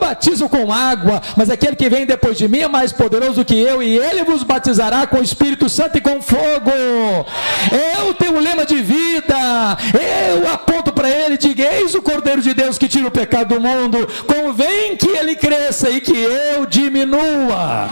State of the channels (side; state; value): both; inverted; correlation -1.00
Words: com água, mas aquele que vem depois de mim é mais poderoso do que eu, e ele vos batizará com o Espírito Santo e com fogo. Eu tenho o lema de vida, eu aponto para ele e digo: eis o Cordeiro de Deus que tira o pecado do mundo, convém que ele cresça e que eu diminua.